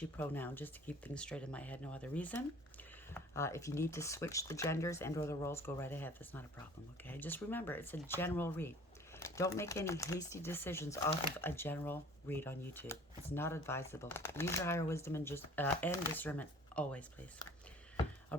pronoun just to keep things straight in my head, no other reason. If you need to switch the genders and or the roles, go right ahead. That's not a problem, okay? Just remember, it's a general read. Don't make any hasty decisions off of a general read on YouTube. It's not advisable. Use your higher wisdom and discernment always, please. I'll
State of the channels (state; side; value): normal; both; correlation 0.49